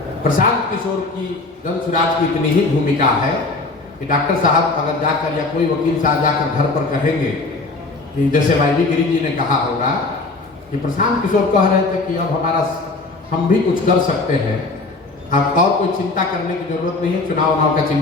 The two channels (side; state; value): right; quieter; 3.5 dB